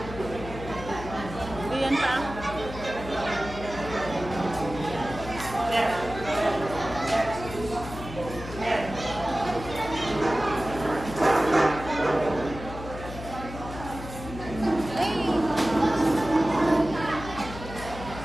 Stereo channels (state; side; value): noise; left; hum, 11 dB below the sound